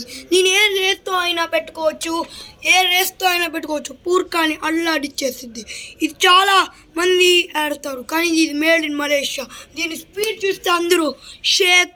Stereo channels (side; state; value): both; identical; correlation 1.00